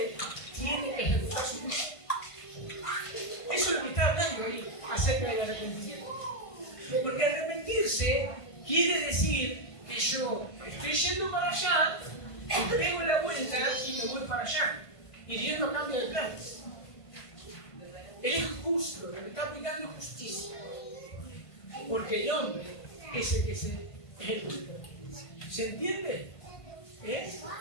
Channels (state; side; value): late; right; 1.5 ms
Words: tiene que ejecutar su juicio. Eso es lo que está hablando ahí acerca del arrepentimiento. Porque arrepentirse quiere decir que yo estoy yendo para allá, pego la vuelta y me voy para allá. Y Dios no cambia de planes. Él es justo, le está aplicando justicia. Porque el hombre es el que se ejecuta. ¿Se entiende?